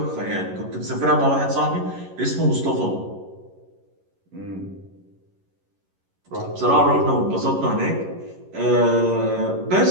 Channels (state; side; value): late; left; 11 ms